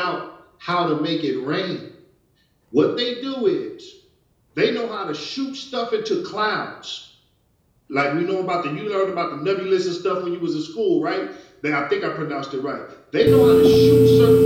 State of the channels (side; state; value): both; identical; correlation 1.00